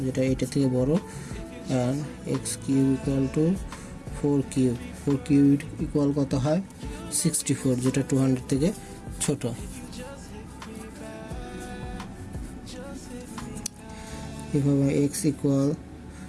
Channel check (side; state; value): both; identical; correlation 1.00